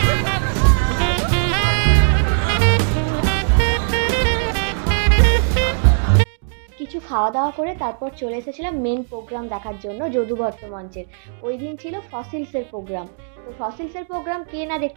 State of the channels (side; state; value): left; silent; digital silence